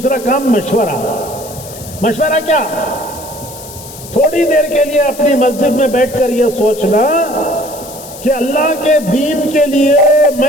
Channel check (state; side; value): noise; left; hiss, 15 dB below the sound